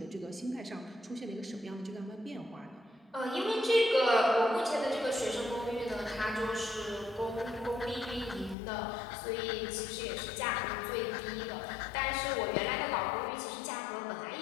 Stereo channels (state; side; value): drops out; right; at 8.6 s